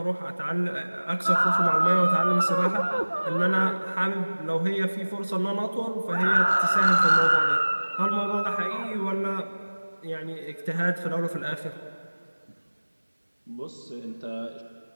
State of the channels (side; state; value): both; inverted; correlation -1.00